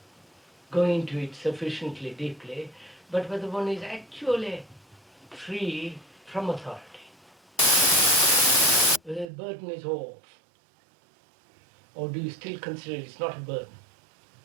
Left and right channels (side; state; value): left; drops out; at 9.2 s